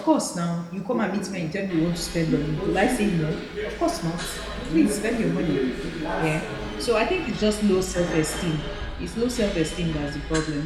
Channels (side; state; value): both; identical; correlation 1.00